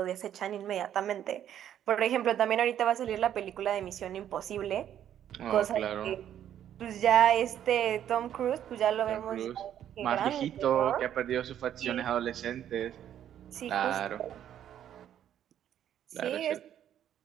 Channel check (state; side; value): quieter; left; 10.5 dB